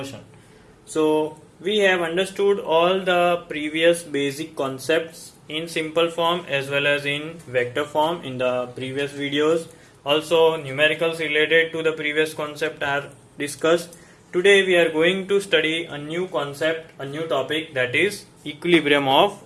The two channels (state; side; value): identical; both; correlation 1.00